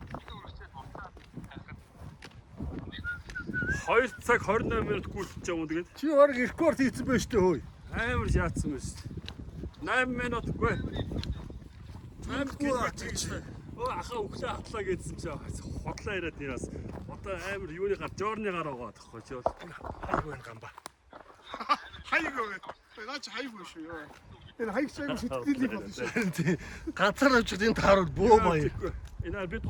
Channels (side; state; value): both; identical; correlation 1.00